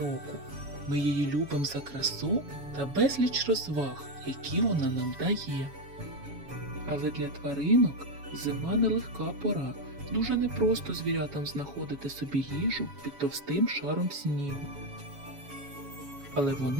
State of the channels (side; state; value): left; late; 7.1 ms